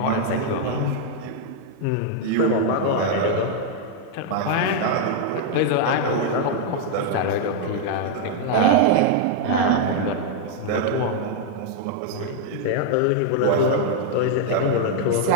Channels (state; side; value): different; both; correlation -0.01